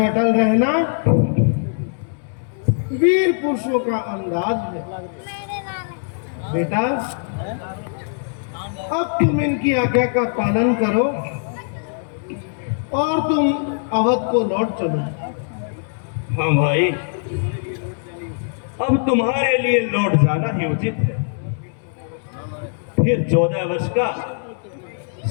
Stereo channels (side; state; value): right; silent; digital silence